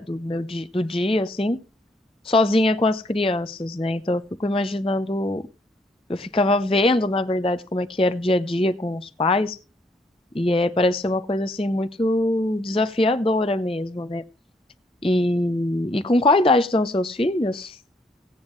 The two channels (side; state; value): both; normal; correlation 0.69